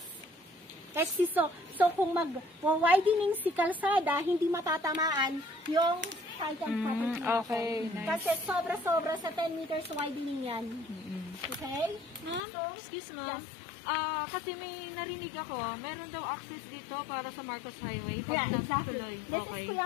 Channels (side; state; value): right; drops out; at 12.4 s